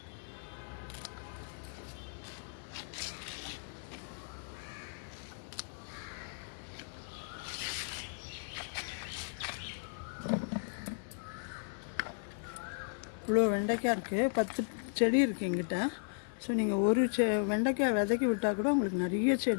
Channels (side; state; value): right; silent; 54 dB below the other